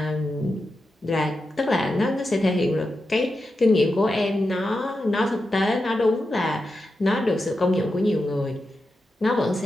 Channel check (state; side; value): normal; both; correlation 0.89